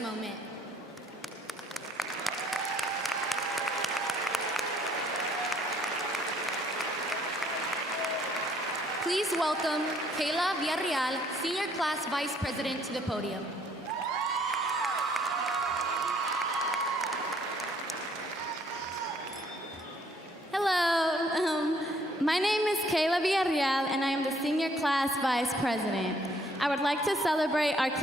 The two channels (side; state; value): both; normal; correlation 0.64